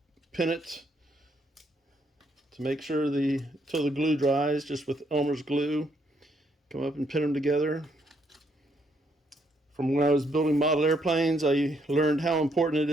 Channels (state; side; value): normal; both; correlation 0.73